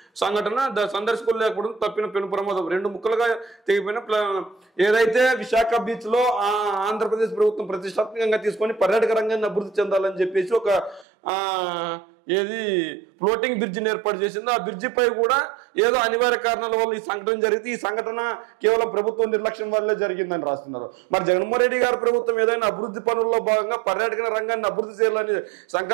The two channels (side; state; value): left; drops out; at 11.1 s